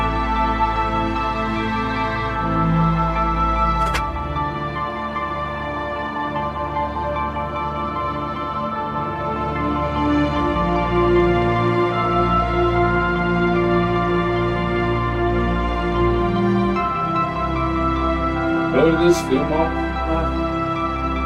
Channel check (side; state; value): both; identical; correlation 1.00